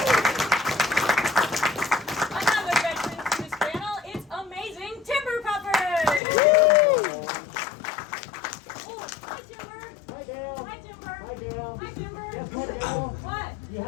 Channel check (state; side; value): drops out; right; at 6.2 s